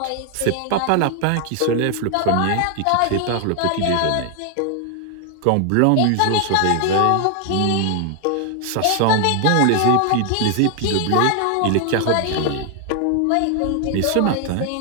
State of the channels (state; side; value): different; both; correlation 0.00